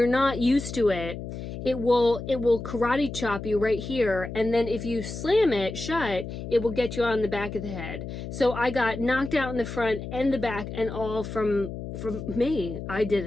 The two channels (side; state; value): left; noise; hum, 8 dB below the sound